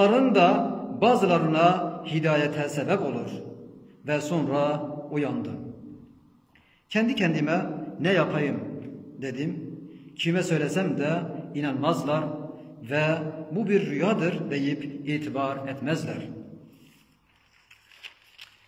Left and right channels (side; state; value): both; identical; correlation 1.00